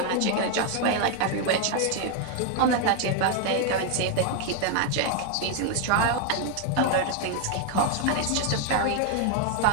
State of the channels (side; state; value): both; different; correlation 0.01